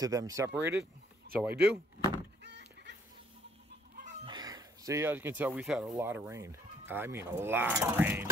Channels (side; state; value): both; normal; correlation 0.65